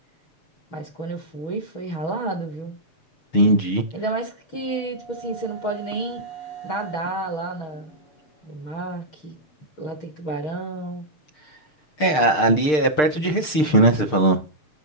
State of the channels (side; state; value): right; late; 6.6 ms